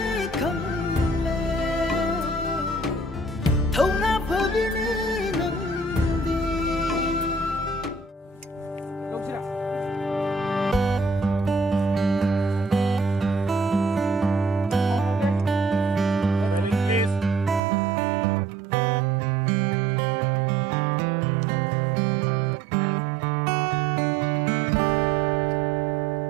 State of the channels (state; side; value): drops out; left; at 17.6 s